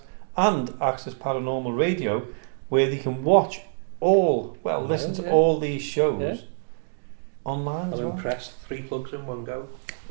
and Access Paranormal Radio, where they can watch listen to all these shows online as well. I'm impressed. 3 plugs in one go.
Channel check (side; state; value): left; silent; digital silence